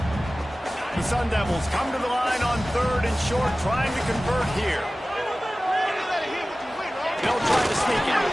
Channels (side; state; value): both; normal; correlation 0.97